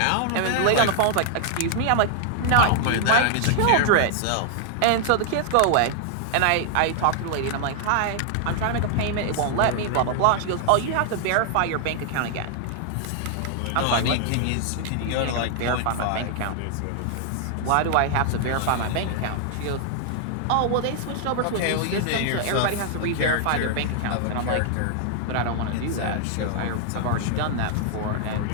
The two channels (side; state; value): both; different; correlation -0.01